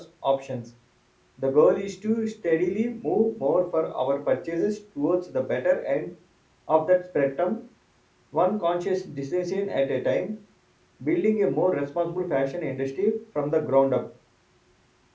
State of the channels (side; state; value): both; identical; correlation 1.00